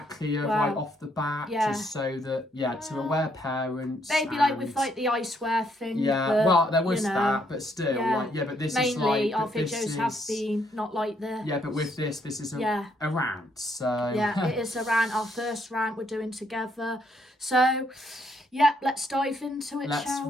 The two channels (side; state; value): both; normal; correlation 0.72